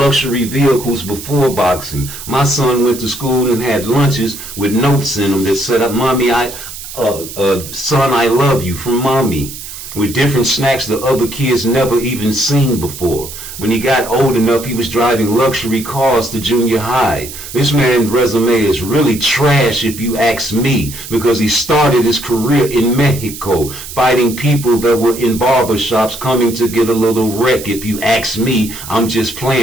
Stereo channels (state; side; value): noise; right; hiss, 12 dB below the sound